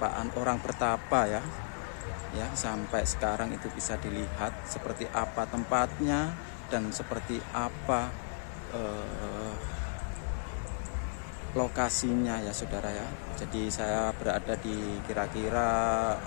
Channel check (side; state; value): right; silent; digital silence